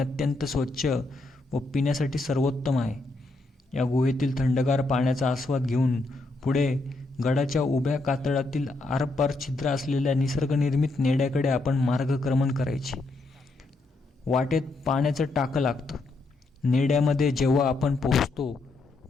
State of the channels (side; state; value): right; quieter; 3.1 dB